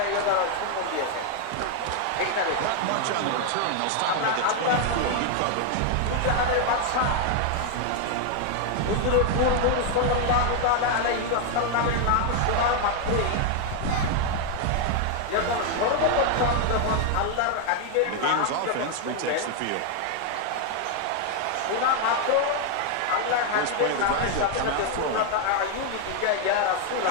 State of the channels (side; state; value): both; different; correlation 0.00